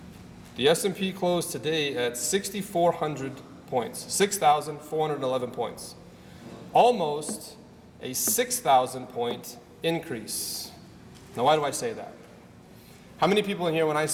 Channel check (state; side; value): identical; both; correlation 1.00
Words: The S&P closed today at 6,400 points, 6,411 points. Almost a 6,000 point increase. Now, why do I say that? How many people in here, when I